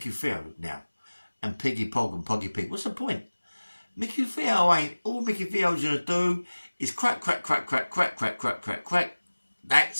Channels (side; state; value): both; inverted; correlation -1.00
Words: Theo now? And Piggy Pog and Poggy Pig. What's the point? Micky Theo ain't. All Micky Theo's going to do is crack, crack, crack, crack, crack, crack, crack, crack, crack.